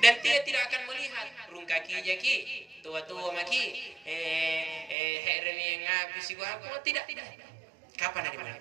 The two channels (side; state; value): left; drops out; at 5.0 s